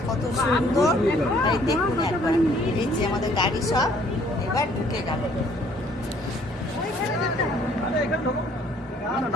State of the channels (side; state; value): both; normal; correlation 0.60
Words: কত সুন্দর, এই দেখুন একবার। এই যে আমাদের গাড়ি সব এবার ঢুকে গেল।